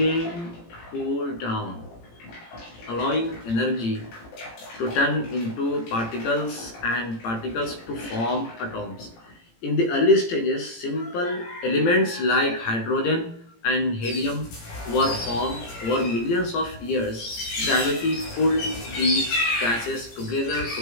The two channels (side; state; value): right; late; 18 ms